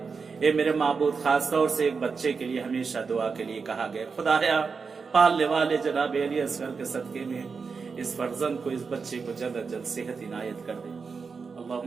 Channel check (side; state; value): left; quieter; 5.1 dB